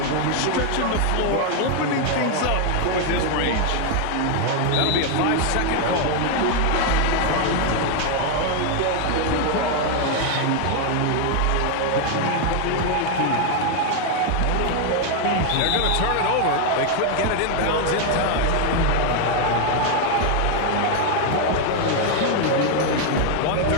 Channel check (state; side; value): different; both; correlation 0.01